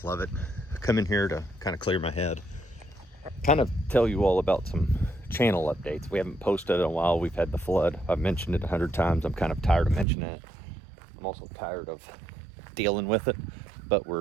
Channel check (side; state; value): left; drops out; at 10.1 s